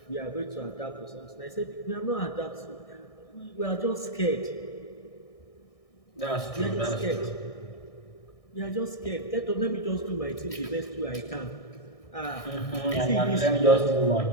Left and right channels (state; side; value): late; right; 1.6 ms